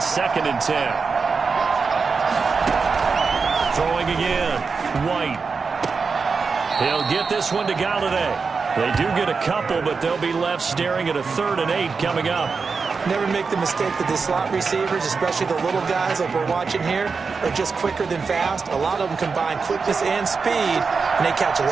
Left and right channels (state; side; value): quieter; left; 4.9 dB